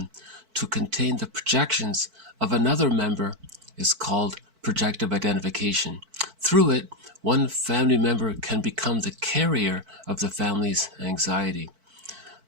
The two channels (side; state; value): left; late; 4.5 ms